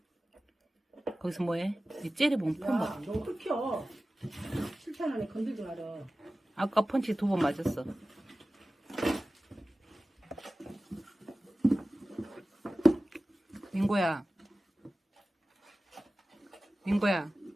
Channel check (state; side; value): normal; both; correlation 0.96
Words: 거기서 뭐해? 이 째려보면 폰 봐. 야, 너 흑혀. 실탄 건들지 마라. 아까 펀치 2번 맞았어. 빙고야. 빙고야.